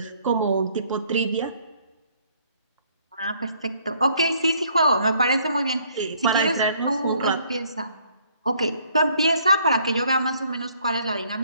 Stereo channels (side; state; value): both; inverted; correlation -0.64